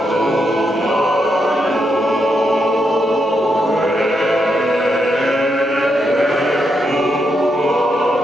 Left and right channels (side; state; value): both; normal; correlation 0.81